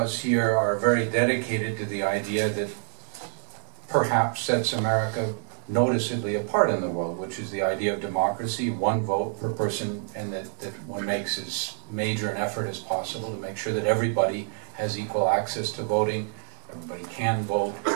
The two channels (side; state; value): left; silent; digital silence